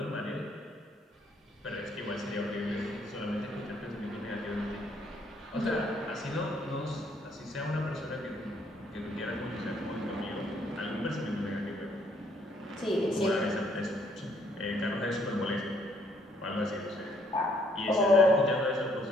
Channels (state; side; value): normal; both; correlation 0.67